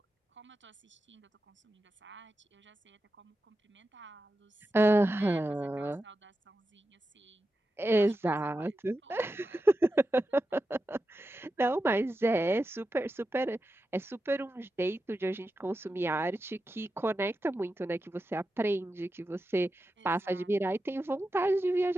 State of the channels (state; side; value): normal; both; correlation 0.90